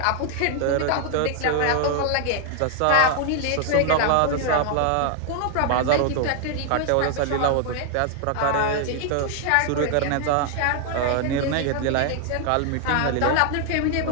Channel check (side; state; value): both; different; correlation 0.00